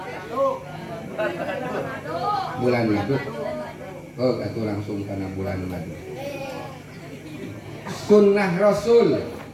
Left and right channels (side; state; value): both; identical; correlation 1.00